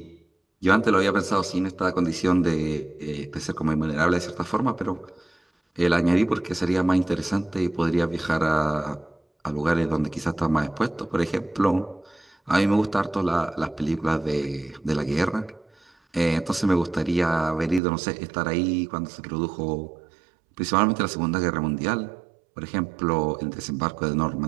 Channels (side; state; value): left; drops out; at 17.8 s